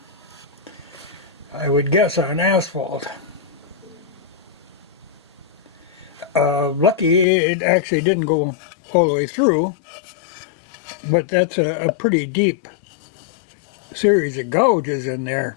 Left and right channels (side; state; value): right; drops out; at 7.2 s